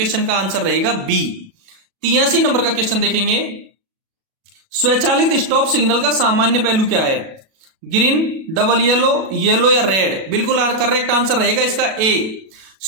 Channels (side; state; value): left; late; 37 ms